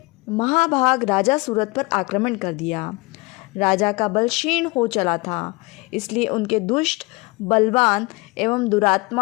महाभाग राजा सूरत पर आक्रमण कर दिया। राजा का बल क्षीण हो चला था, इसलिए उनके दुष्ट, बलवान एवं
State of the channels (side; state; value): right; quieter; 25.4 dB